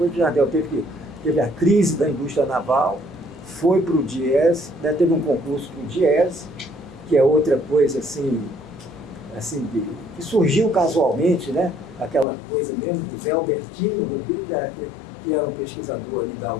o Jardel teve a crise da indústria naval, foi para o DIES, né? Teve um concurso para o DIES, que é outra coisa assim que surgiu casualmente, né? Aquela coisa mesmo do Zé Albertino Rodrigues, que era um pesquisador ali da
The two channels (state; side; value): drops out; right; at 12.2 s